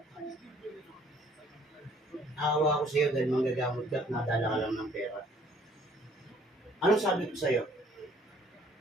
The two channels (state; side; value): normal; both; correlation 0.59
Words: Awa ko sa iyo dahil manggagamot ka at nadala ka lang ng pera. Anong sabi ko sa iyo?